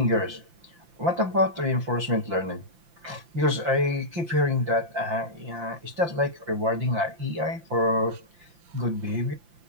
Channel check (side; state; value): left; late; 5.8 ms